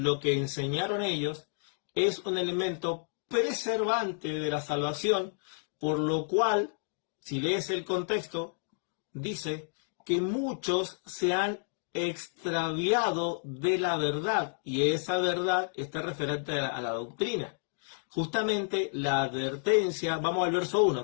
que enseñaron ellos, es un elemento preservante de la salvación, por lo cual, si lees el contexto, dice que muchos se han extraviado de la verdad, y esa verdad está referente a la doctrina. Justamente la advertencia, vamos al verso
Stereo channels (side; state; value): right; silent; digital silence